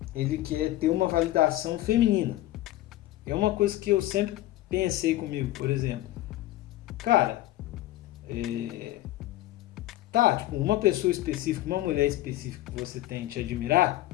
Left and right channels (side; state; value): right; quieter; 15.6 dB